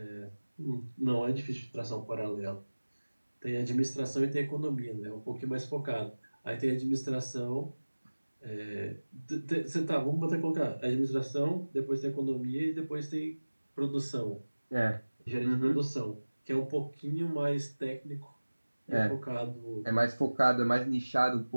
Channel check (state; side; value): inverted; both; correlation -1.00